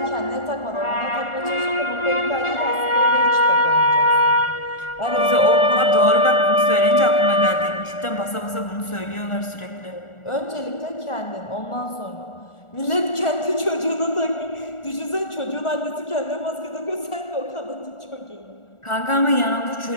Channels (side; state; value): right; late; 1.4 ms